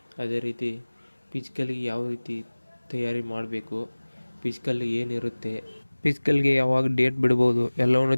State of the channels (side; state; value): both; inverted; correlation -1.00